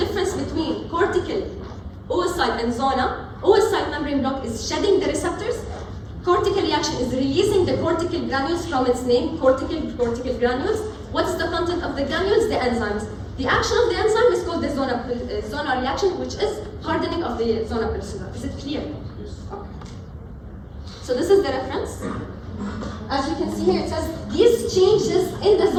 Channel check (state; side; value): identical; both; correlation 1.00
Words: between cortical, oocyte, and zona, oocyte membrane block is shedding the receptors. Cortical reaction is releasing the cortical granules from its name, cortical granules. What's the content of the granules? The enzymes. The action of the enzyme is called the zona reaction, which is hardening of the zona pellucida. Is it clear? Okay. So this is the reference. As you can see here, it says these changes in the